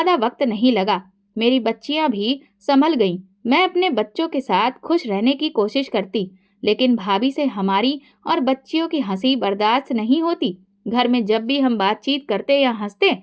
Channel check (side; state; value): both; identical; correlation 1.00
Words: वक्त नहीं लगा। मेरी बच्चियां भी संभल गईं। मैं अपने बच्चों के साथ खुश रहने की कोशिश करती, लेकिन भाभी से हमारी और बच्चियों की हंसी बर्दाश्त नहीं होती। घर में जब भी हम बातचीत करते या हंसते